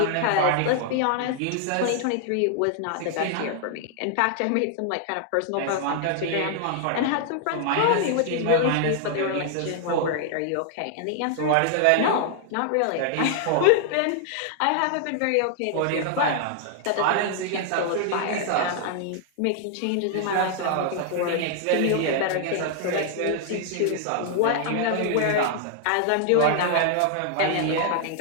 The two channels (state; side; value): different; both; correlation 0.00